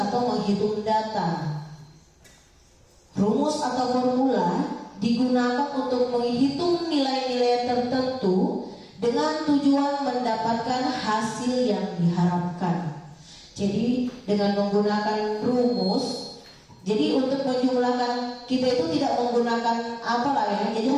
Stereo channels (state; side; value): identical; both; correlation 1.00